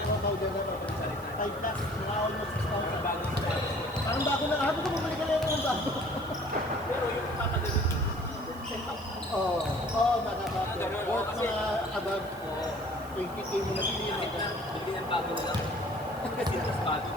powder na to. 5 plus, mga almost 6,000. Bago sa Parang bago na, habang ko bumalik ka na yung bago. pero yung papagalit, Oo, oo, baka ba. ganun, Worth kasi- mga above 20K mo na bilhin. kahit na, hindi yan bago na lang. Kasi mas bago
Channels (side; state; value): right; noise; hiss, 23 dB below the sound